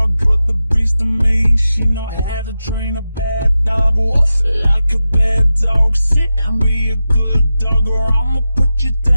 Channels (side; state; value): both; inverted; correlation -0.92